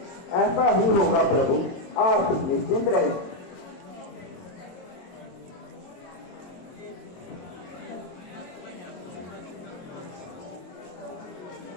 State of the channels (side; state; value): right; late; 22 ms